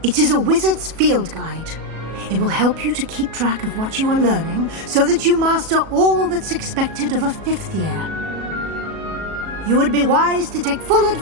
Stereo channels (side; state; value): left; late; 37 ms